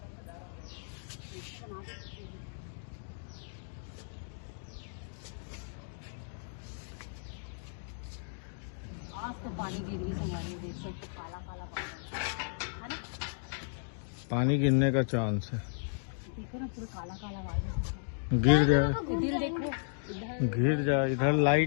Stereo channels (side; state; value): right; silent; digital silence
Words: आज तो पानी गिर रही हमारे, देख सकते काला काला पानी है ना। पानी गिरने का चांस है। देखो ना पूरा काला काला पानी। गिर जाए, इधर देखो, इधर गिर जाए। इधर